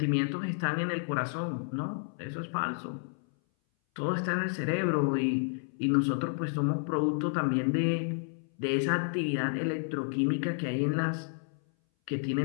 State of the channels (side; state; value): right; silent; 57 dB below the other